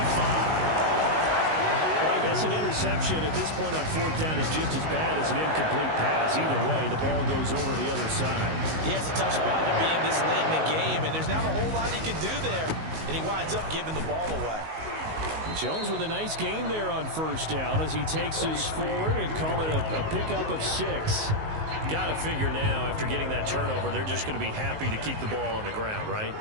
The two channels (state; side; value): late; left; 19 ms